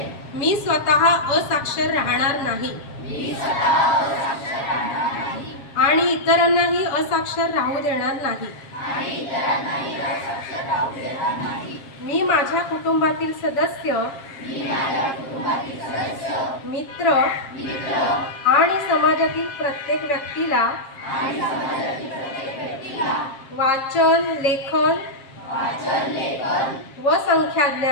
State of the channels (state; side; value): late; right; 7.4 ms